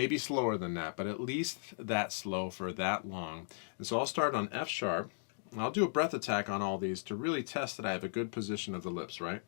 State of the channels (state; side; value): silent; right; digital silence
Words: slower than that, but at least that slow for that long. And so I'll start on F sharp, and I'll do a breath attack on all these to really test that I have a good position of the lips, right?